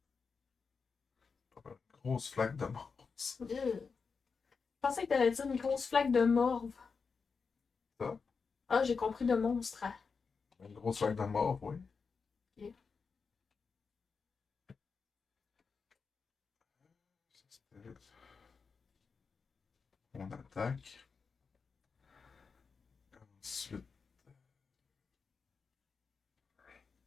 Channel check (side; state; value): right; quieter; 5.2 dB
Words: Une grosse flaque de mort. Je pensais que t'allais dire une grosse flaque de morve. Ça? Ah, j'ai compris de monstre. Une grosse flaque de mort, oui. Ok. C'était mon attaque. Ensuite,